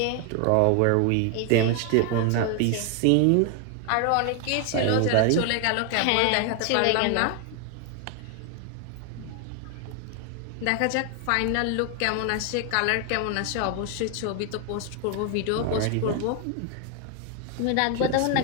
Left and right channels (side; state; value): both; different; correlation 0.00